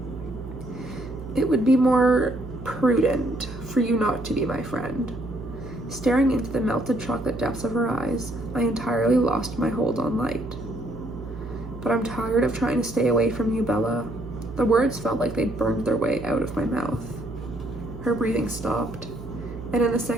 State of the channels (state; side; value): noise; right; hum, 12 dB below the sound